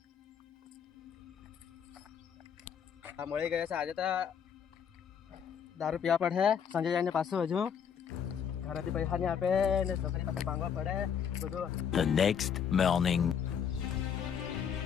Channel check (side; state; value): right; quieter; 7.7 dB